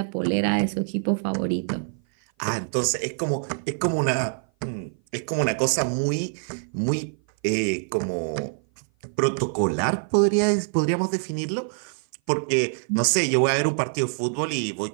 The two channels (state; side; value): silent; left; 57 dB below the other